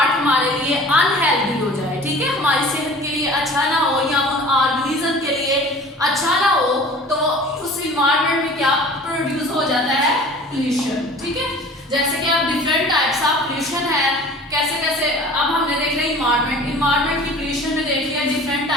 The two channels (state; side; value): normal; both; correlation 0.44